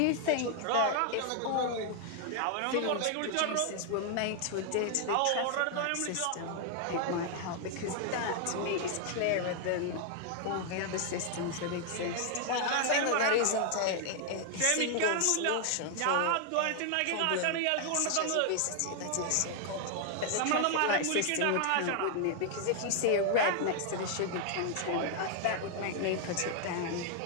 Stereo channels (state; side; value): different; both; correlation 0.00